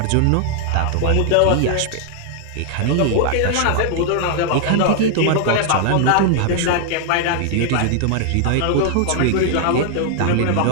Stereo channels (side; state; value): both; different; correlation 0.00